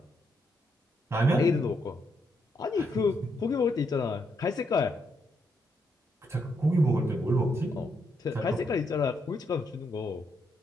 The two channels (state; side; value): normal; both; correlation 0.78